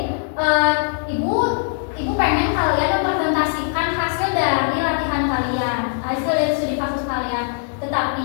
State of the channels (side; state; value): right; silent; digital silence